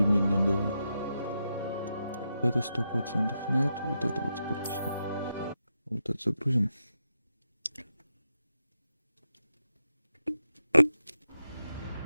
был? Вот это 100% нет, вот это вот скорее всего. Вот это загрузим.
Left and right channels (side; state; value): both; inverted; correlation -0.86